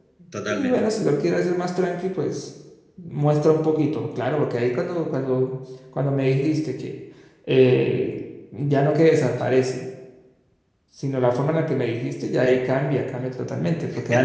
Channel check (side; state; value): both; identical; correlation 1.00